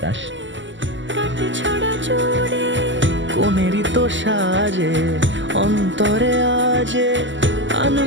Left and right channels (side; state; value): left; late; 0.54 ms